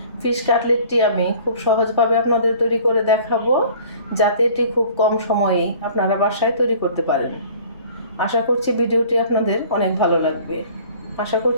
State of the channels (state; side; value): inverted; both; correlation -0.50